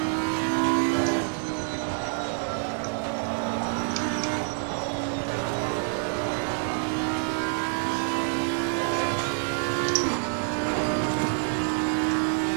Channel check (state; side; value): silent; left; 59 dB below the other